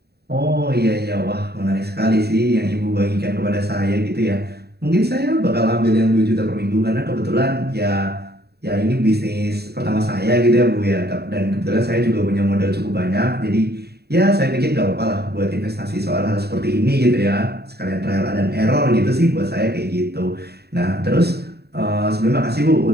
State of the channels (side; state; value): left; late; 0.47 ms